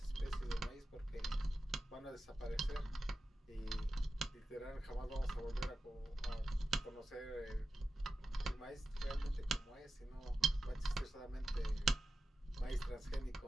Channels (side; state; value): both; normal; correlation 0.91